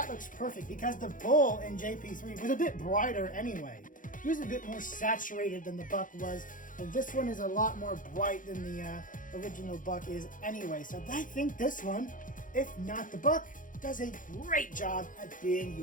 looks perfect, because the Bull in JP3 was a bit brighter anyway. He was a bit more saturated than the Buck was, and this one is a lot more bright than the original Buck is anyway. So I think this one, if not the Buck, does a great job at being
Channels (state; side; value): late; right; 0.39 ms